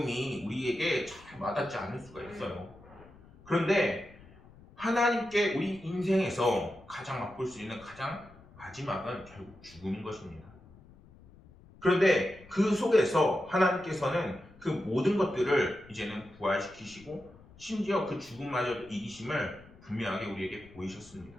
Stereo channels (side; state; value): left; noise; rumble, 23 dB below the sound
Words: 우리에게 잘 와닿지 않을 수가 있어요. 그런데 하나님께 우리 인생에서 가장 맛볼 수 있는 가장 마지막은 결국 죽음인 것입니다. 그런데 그 속에서 하나님께서는 그 모든 것들을 이제는 부활시키시고 심지어 그 죽음마저 이기심을 분명하게 우리에게 보이셨습니다.